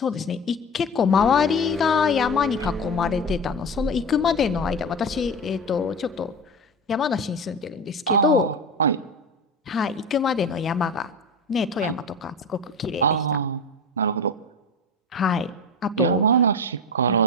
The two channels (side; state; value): both; normal; correlation 0.26